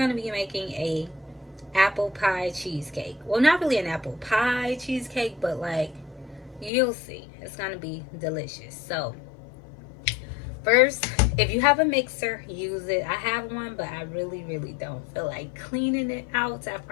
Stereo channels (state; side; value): drops out; right; at 6.7 s